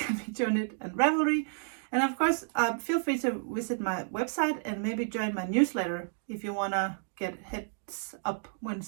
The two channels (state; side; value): silent; left; digital silence